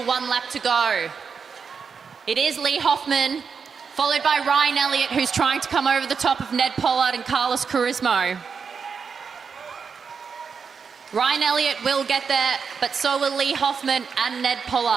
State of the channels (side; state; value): left; quieter; 5.9 dB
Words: 1 lap to go. It is Lee Hoffman, followed by Ryan Elliott, who's trying to come over the top of Ned Pollard and Carlos Charisma. Ryan Elliott will get there, but so will Lee Hoffman and Ned